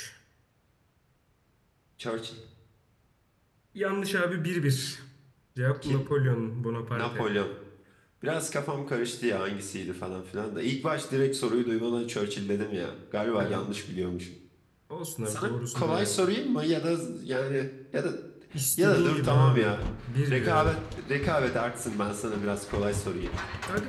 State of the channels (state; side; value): identical; both; correlation 1.00